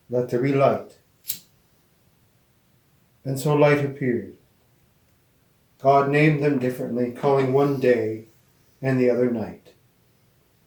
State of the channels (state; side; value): identical; both; correlation 1.00